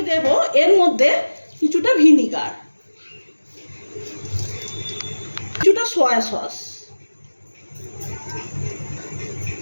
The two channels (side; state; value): both; inverted; correlation -1.00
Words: দেব এর মধ্যে কিছুটা ভিনিগার, কিছুটা সয়া সস,